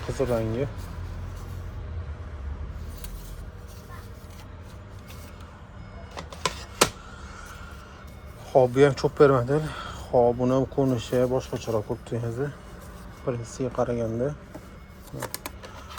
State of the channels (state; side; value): identical; both; correlation 1.00